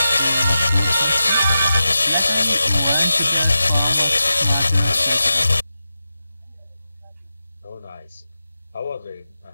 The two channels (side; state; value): both; inverted; correlation -0.91